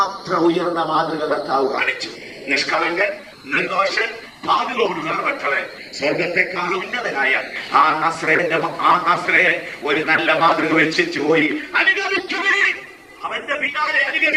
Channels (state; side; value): identical; both; correlation 1.00